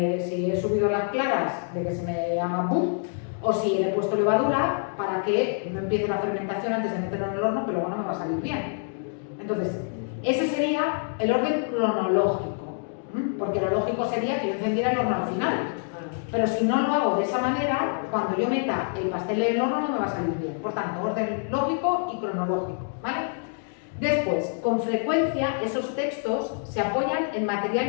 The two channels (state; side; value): silent; right; 61 dB below the other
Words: si he subido las claras, de que se me haga boom, o si le he puesto levadura, para que no empiece la fermentación antes de meterlo en el horno, que luego no me va a salir bien. Entonces, ese sería el orden cronológico, porque lo lógico sería que yo encendiera el horno al final. Pero si no lo hago de esa manera, cuando yo meta el pastel en el horno no me va a salir bien. Por tanto, orden lógico y cronológico, ¿vale? Después, con frecuencia, esos textos se apoyan en